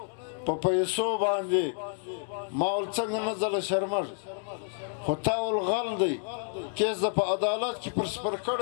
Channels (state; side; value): silent; right; 58 dB below the other